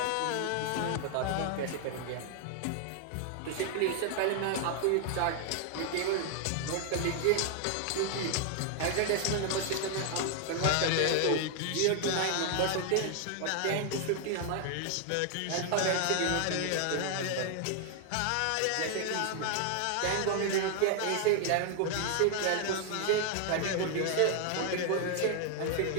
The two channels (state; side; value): different; both; correlation 0.00